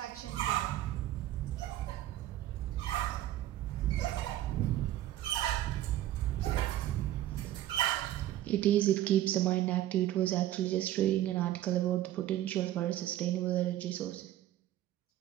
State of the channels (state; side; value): quieter; left; 13.7 dB